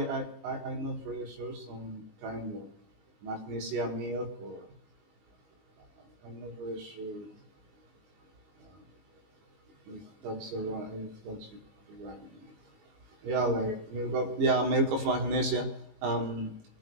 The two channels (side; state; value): left; late; 19 ms